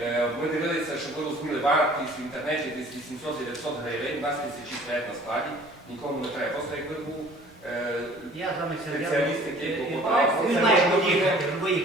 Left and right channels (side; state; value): both; normal; correlation 0.51